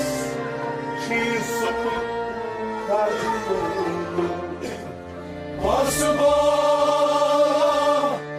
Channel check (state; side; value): identical; both; correlation 1.00